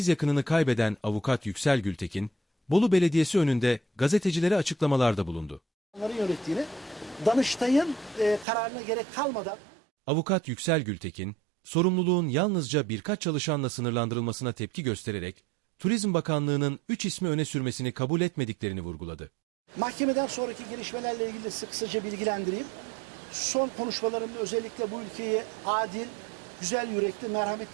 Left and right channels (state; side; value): drops out; left; at 8.5 s